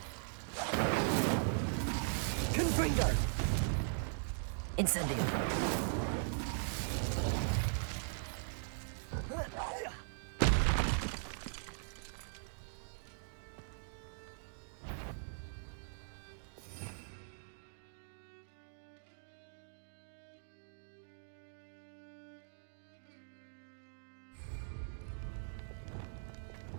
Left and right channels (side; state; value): left; silent; digital silence